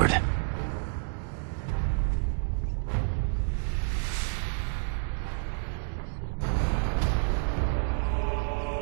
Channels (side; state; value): left; silent; digital silence